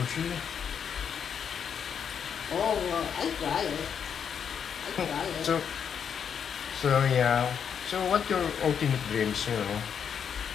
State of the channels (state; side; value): quieter; right; 7.6 dB